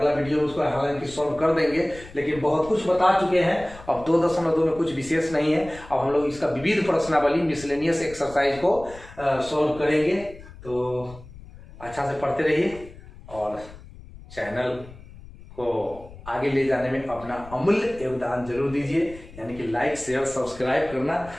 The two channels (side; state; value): left; noise; rumble, 18 dB below the sound